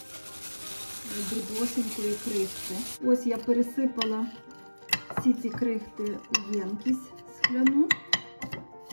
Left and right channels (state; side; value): inverted; both; correlation -1.00